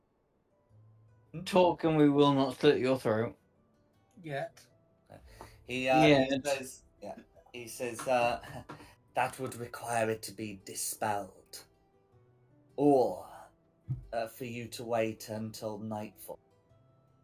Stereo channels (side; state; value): both; identical; correlation 1.00